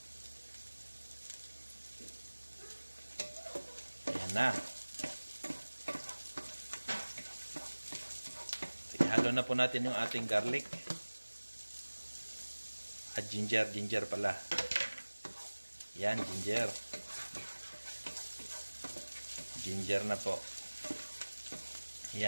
Ayan na. Ihalo na po natin yung ating garlic. At ginger pala. Yan, ginger. Ginger na po.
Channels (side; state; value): both; inverted; correlation -1.00